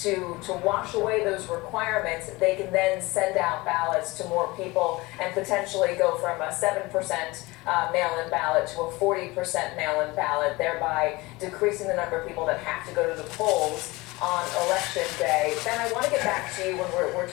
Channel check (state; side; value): quieter; right; 22.2 dB